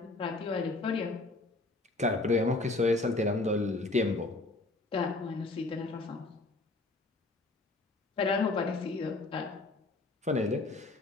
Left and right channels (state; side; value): quieter; right; 3.2 dB